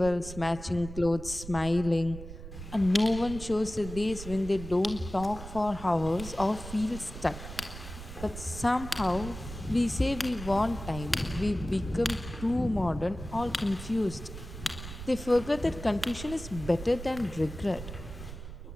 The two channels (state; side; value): noise; right; rumble, 11 dB below the sound